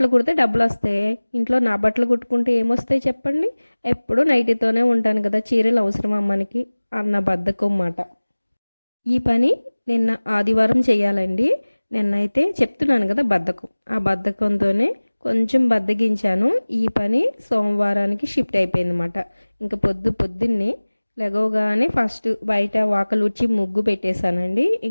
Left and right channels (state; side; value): inverted; both; correlation -1.00